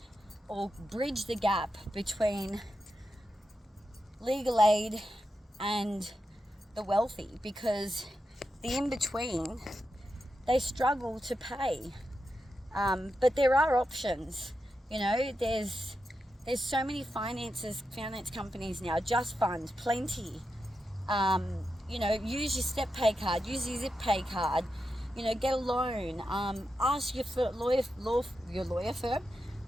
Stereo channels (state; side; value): normal; both; correlation 0.88